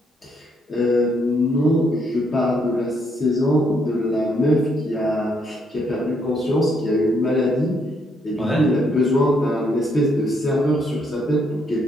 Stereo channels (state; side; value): normal; both; correlation 0.73